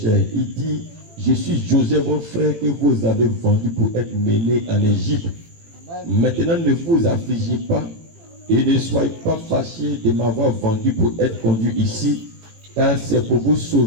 Il dit, je suis Joseph, votre frère que vous avez vendu pour être mené en Égypte. Maintenant ne vous affligez pas et ne soyez pas fâchés de m'avoir vendu pour être conduit ici, car c'est pour vous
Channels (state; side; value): late; left; 18 ms